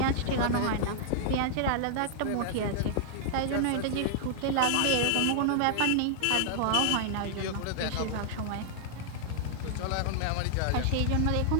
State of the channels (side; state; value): both; different; correlation -0.01